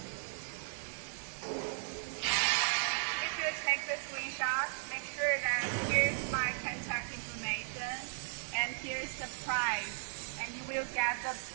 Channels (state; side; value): silent; left; digital silence